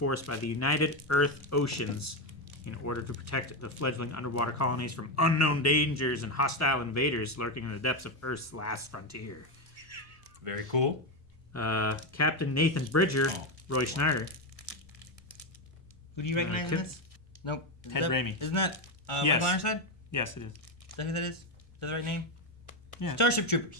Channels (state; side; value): normal; both; correlation 0.09